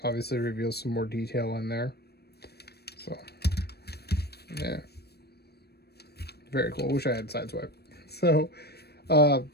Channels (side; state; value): right; late; 0.47 ms